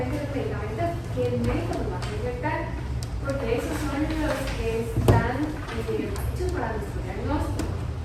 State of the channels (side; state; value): both; identical; correlation 1.00